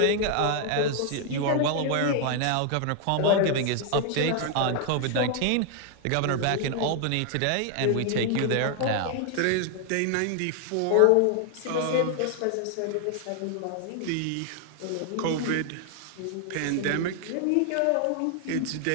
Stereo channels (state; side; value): different; both; correlation 0.00